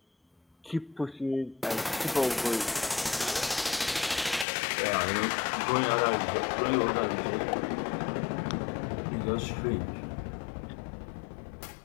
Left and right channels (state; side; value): drops out; right; at 4.5 s